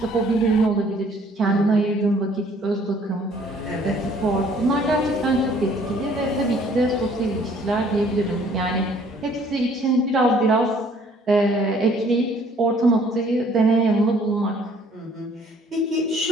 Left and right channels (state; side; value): normal; both; correlation 0.59